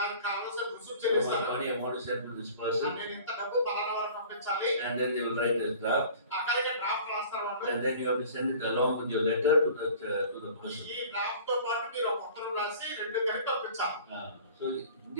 కావాల్సిన రుసుము చెల్లిస్తారు. Money I want to send to this person. నేను ఇంత డబ్బు పలానా వారికి పంపించాలి. And then they will write a draft. అక్కడికి డ్రాఫ్ట్ రాస్తారు వాళ్ళు. And then you have to send it along with your letter to the person. ఈ డ్రాఫ్ట్ తో పాటు మీరు ఒక ఉత్తరం రాసి రెండు కలిపి పంపించాలి. So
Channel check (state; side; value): inverted; both; correlation -0.45